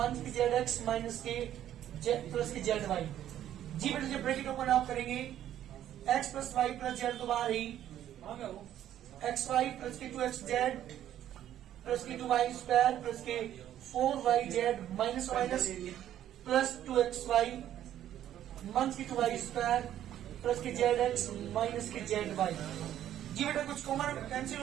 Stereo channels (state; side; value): quieter; left; 11.5 dB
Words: की zx माइनस के प्लस की zy। जी बेटा जब ब्रैकेट ओपन आप करेंगे x plus y plus z तो बाहर ही, एक्स वाई प्लस की 2xz प्लस की 2y स्क्वायर प्लस के 4yz minus minus plus 2xy minus की 2y स्क्वायर प्लस की zx माइनस की zy। जी बेटा कुछ कॉमन कैंसिल